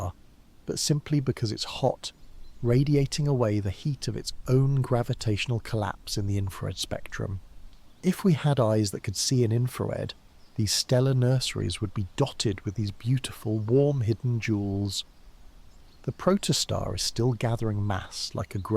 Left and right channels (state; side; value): identical; both; correlation 1.00